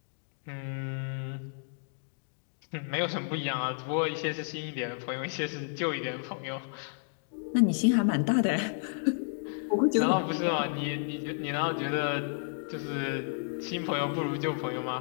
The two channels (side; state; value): right; silent; digital silence